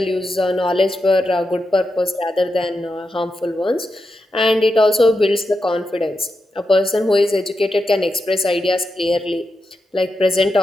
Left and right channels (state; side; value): normal; both; correlation 0.87